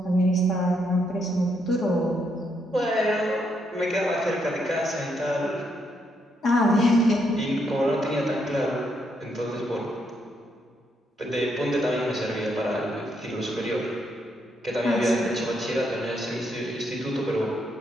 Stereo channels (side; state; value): both; normal; correlation 0.77